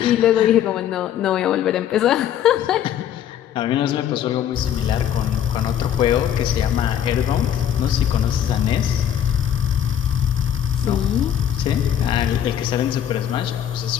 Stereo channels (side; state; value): right; quieter; 9.9 dB